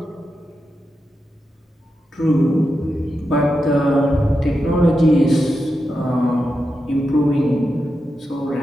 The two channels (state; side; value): normal; both; correlation 0.88